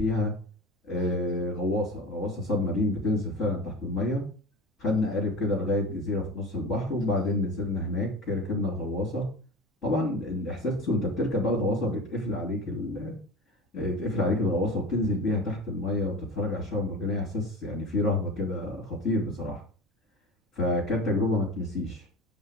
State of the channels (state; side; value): normal; both; correlation 0.32